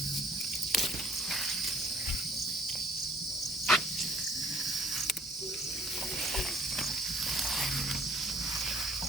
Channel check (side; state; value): both; normal; correlation 0.55